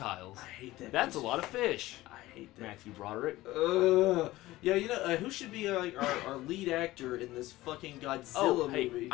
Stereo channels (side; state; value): right; quieter; 17.5 dB